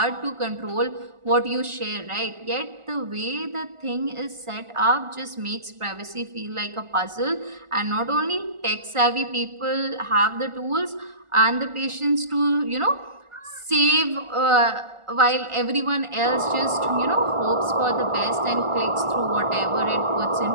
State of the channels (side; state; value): left; late; 1.4 ms